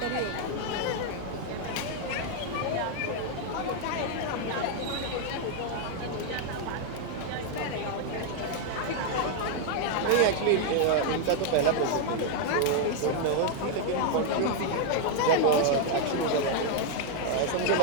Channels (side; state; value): both; different; correlation 0.00